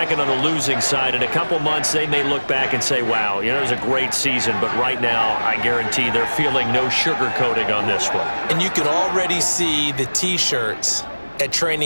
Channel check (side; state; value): both; inverted; correlation -1.00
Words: on the losing side. In a couple months, they may look back and say, wow, you know, it was a great season. But right now, I guarantee they're feeling no sugarcoating on this one. And you can already see the T-shirts at